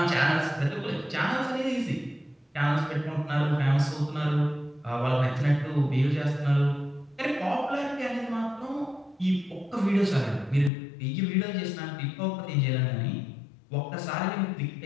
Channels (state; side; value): drops out; right; at 10.7 s